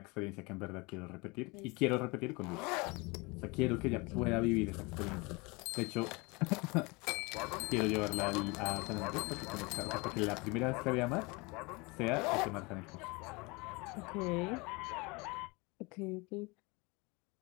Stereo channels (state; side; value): quieter; right; 26.7 dB